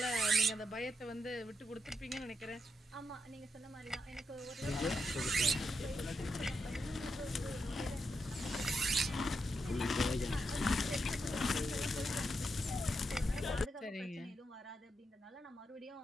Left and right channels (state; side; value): normal; both; correlation 0.84